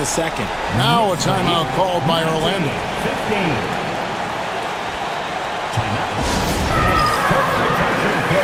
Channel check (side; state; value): both; identical; correlation 1.00